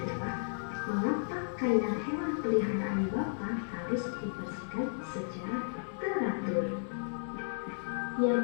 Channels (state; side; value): silent; right; digital silence